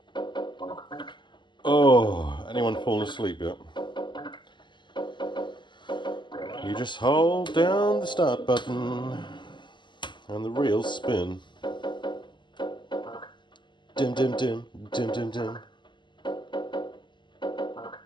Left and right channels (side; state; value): right; late; 0.22 ms